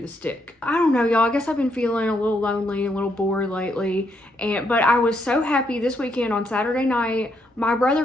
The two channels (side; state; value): both; normal; correlation 0.76